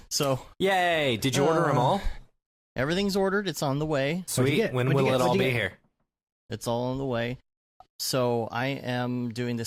So. Yay! Did you order them all? Everything's ordered. It's on the way. Sweet. When will it all be here? It's all on the way. So I am doing the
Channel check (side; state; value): both; identical; correlation 1.00